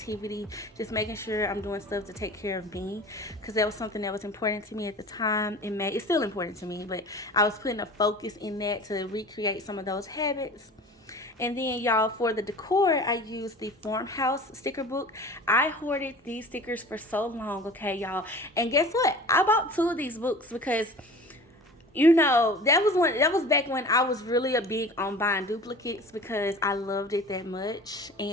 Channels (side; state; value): both; normal; correlation 0.40